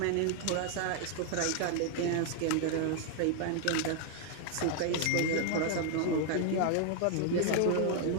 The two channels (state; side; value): different; both; correlation 0.00